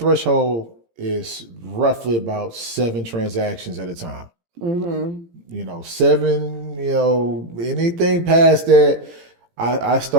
is roughly about 7 transactions at a time. You know, 7, you know, anything past that, I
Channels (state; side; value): late; left; 17 ms